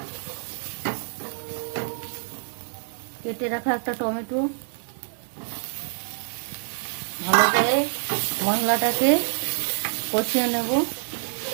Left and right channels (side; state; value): left; silent; digital silence